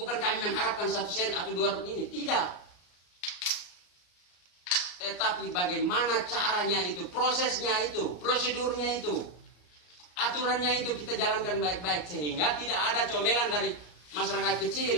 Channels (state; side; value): late; right; 33 ms